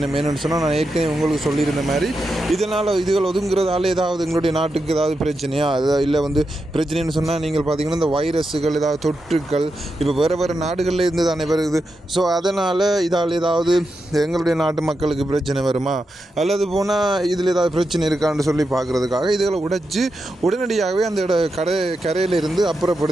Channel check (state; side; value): normal; both; correlation 0.87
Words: என்னென்னு சொன்னால், நான் ஏற்கனவே உங்களுக்கு சொல்லியிருந்த மாதிரி இதுகள் ஒதுங்குறதால ஏதாவது எங்களுடைய நாட்டுக்கு ஏதாவது பிரச்சனையா, இல்லை வந்து பிரச்சனைன்னு சொன்னால், நீங்கள் பார்த்தீங்கன்னா இந்த வைரஸுகள் ஏதாவது தொற்றுக்கள் இப்போ வேறு நாடுகளில் இருந்து தானே வருது. ஸோ அதனால் இதால் ஏதாவது எங்களுடைய நாட்டு மக்களுக்கு பிரச்சனை வருமா, அல்லது போனால் இதில் ஏதாவது பிரச்சனை இருக்கான்னு சொல்லி பார்க்குறதுக்காக இதுகளை உடைச்சி உடனடியாகவே அந்த கரையில் இருந்து